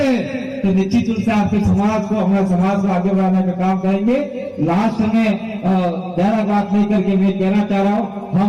तो निश्चित रूप से आपके समाज को, हमारे समाज को आगे बढ़ाने का काम करेंगे। लास्ट में ज्यादा बात नहीं करके मैं कहना चाह रहा हूँ,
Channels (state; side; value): identical; both; correlation 1.00